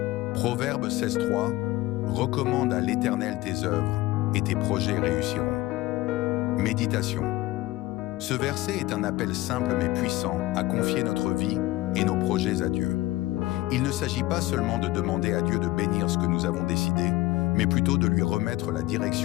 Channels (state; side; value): quieter; right; 18.0 dB